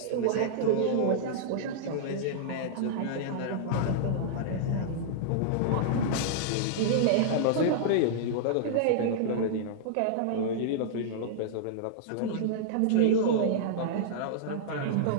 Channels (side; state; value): both; different; correlation -0.02